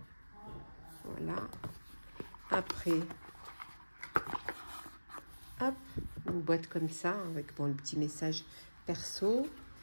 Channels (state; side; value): inverted; both; correlation -1.00